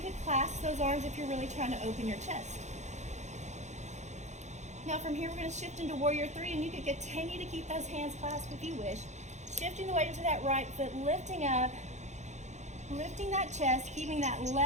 clasp those arms if you're really trying to open your chest. Now from here, we're going to shift into warrior 3, and you can continue to keep those hands clasped if you wish. Shifting the weight into that right foot, lifting up, lifting that chest, keeping that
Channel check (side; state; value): left; late; 0.34 ms